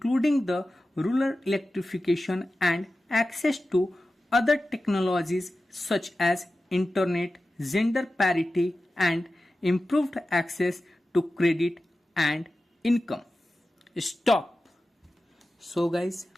the rural electrification and access to other technologies such as internet, gender parity, and improved access to credit and income. Stop. So guys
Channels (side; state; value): both; normal; correlation 0.94